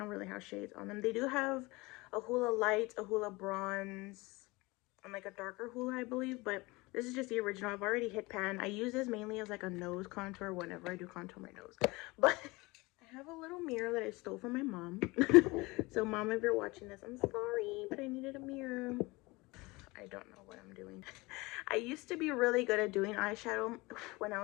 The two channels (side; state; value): right; quieter; 23.2 dB